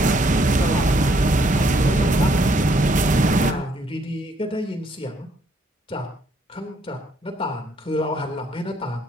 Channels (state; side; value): normal; both; correlation 0.69